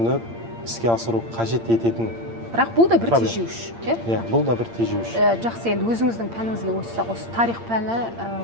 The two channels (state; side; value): late; left; 8.7 ms